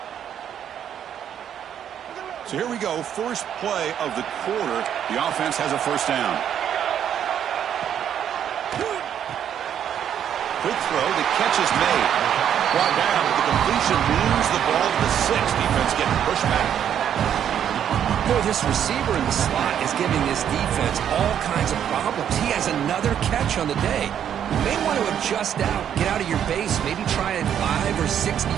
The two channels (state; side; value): quieter; left; 9.4 dB